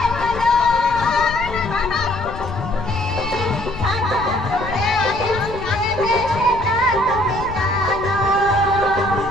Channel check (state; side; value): noise; left; rumble, 12 dB below the sound